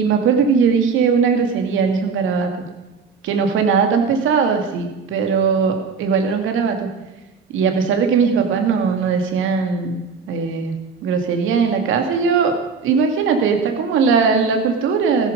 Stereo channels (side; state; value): left; quieter; 5.4 dB